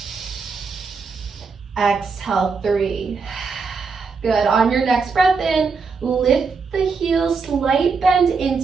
Exhale 3. Good. On your next breath in, lift the heels, slight bend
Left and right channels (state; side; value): quieter; left; 4.9 dB